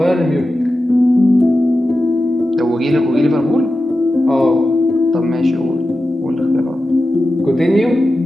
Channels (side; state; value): both; normal; correlation 0.92